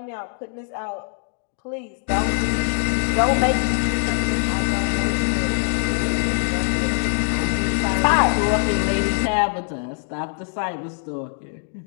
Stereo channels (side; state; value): right; silent; 63 dB below the other